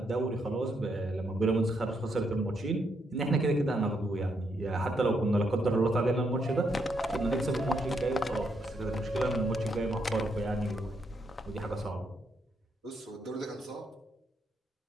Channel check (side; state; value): both; normal; correlation 0.77